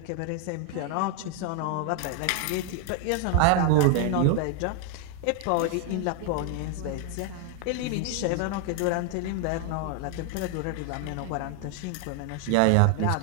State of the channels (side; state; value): both; different; correlation 0.01